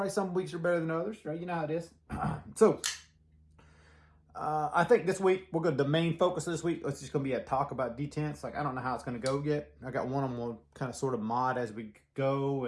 Some weeks are better than others, right? You know how it is. I think this week the main focus of this week is just gonna be a talk about detents. Like I don't know how it's gonna go yet. I got one I'm gonna kind of sort of mod as we go,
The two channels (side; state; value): both; identical; correlation 1.00